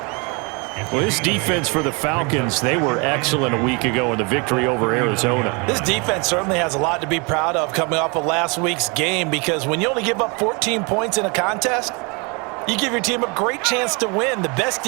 Well, this defense for the Falcons, they were excellent a week ago in the victory over Arizona. This defense certainly has a lot to be proud of coming off of last week's game, because when you only give up 14 points in a contest, you give your team a great chance to win. The best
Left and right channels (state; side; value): quieter; left; 30.8 dB